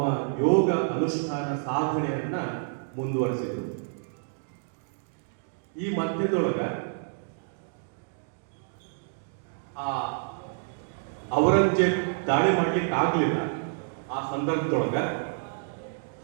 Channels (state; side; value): silent; left; digital silence